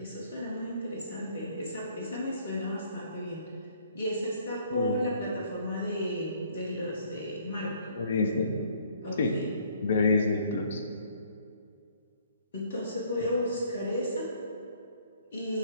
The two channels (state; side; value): inverted; both; correlation -0.61